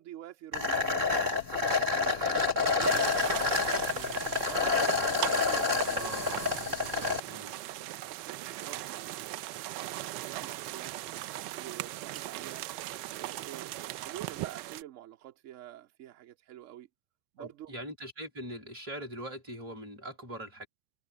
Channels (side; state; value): left; late; 3.4 ms